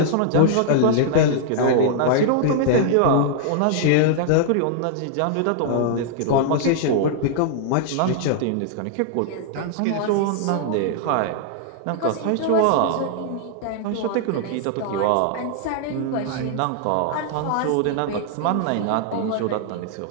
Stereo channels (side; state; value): both; different; correlation -0.01